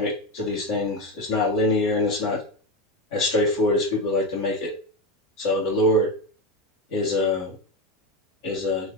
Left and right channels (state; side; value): normal; both; correlation 0.15